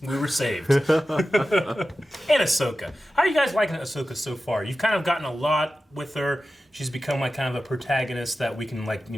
we were saved. And Ahsoka. How are you guys liking Ahsoka so far? You've kind of gotten a lot with her. She's become like kind of a protagonist that we can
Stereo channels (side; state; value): both; normal; correlation 0.94